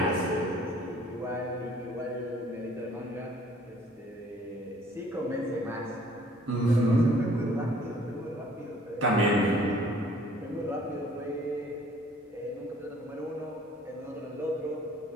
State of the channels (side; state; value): both; normal; correlation 0.56